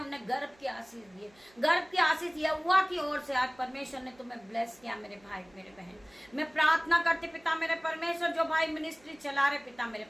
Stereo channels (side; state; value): right; noise; hum, 29 dB below the sound